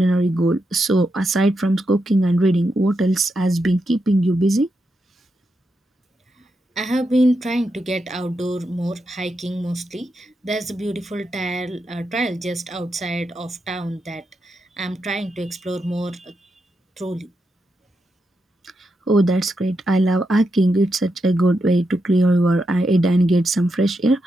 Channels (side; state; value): both; normal; correlation 0.85